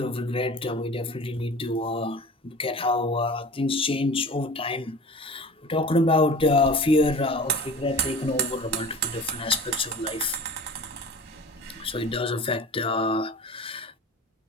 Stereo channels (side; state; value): both; normal; correlation 0.38